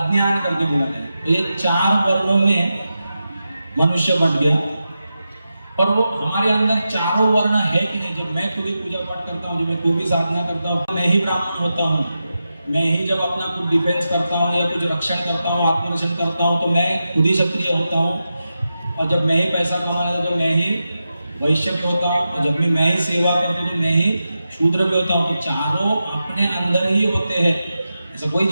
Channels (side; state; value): both; inverted; correlation -0.90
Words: करके बोला गया है। तो ये 4 वर्णों में मनुष्य बट गया। और वो हमारे अंदर चारों वर्ण है कि नहीं, जब मैं खुद ही पूजा पाठ करता हूँ, जब मैं कोई भी साधना करता हूँ, मैं ही ब्राह्मण होता हूँ, मैं ही जब अपना कुछ डिफेंस करता हूँ या कुछ रक्षण करता हूँ, आत्मरक्षण करता हूँ, तो मैं खुद ही क्षत्रिय होता हूँ। और जब मैं ही पैसा कमाता हूँ तो मैं ही वैश्य भी होता हूँ, और जब मैं ही सेवा करता हूँ तो मैं ही शूद्र भी होता हूँ। तो चारों अपने अंदर ही होते हैं, ऐसा कोई